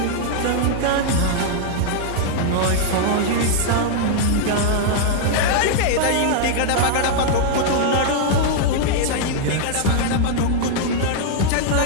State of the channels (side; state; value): both; different; correlation -0.01